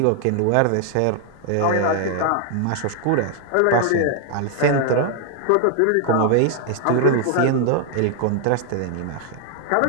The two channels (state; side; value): different; both; correlation 0.00